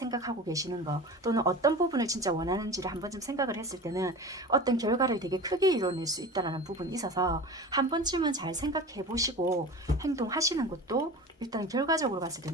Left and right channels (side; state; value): both; normal; correlation 0.34